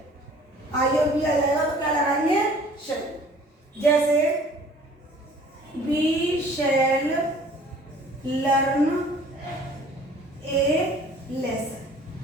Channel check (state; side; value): normal; both; correlation 0.51